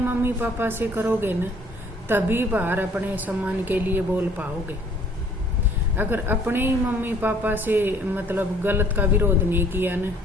मम्मी पापा से करोगे न, तभी बाहर अपने सम्मान के लिए बोल पाओगे। अगर अपने ही मम्मी पापा से मतलब गलत का विरोध नहीं किया न,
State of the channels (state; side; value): normal; both; correlation 0.58